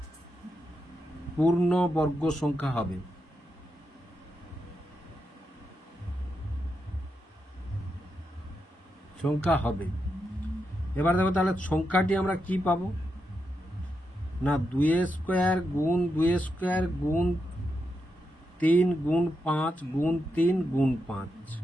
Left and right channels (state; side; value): normal; both; correlation 0.85